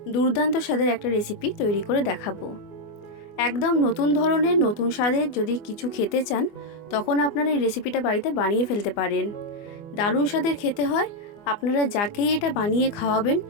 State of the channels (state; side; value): late; right; 24 ms